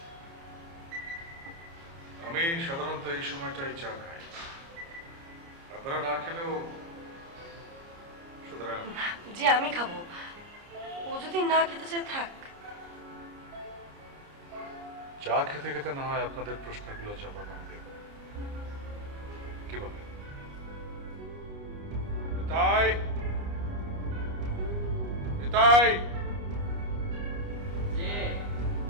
আমি সাধারণত এই সময়টাই চা খাই, আপনারা না খেলেও। সুতরাং জি আমি খাবো, ও যদি না খেতে চায় থাক। চা খেতে খেতে না হয় আপনাদের প্রশ্নগুলো জবাব আমি দেব, কি বলে? তাই তাই যে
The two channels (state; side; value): late; left; 29 ms